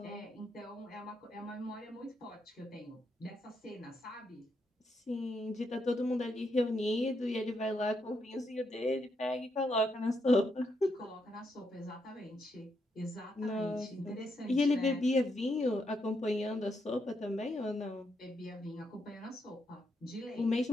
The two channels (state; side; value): normal; both; correlation 0.79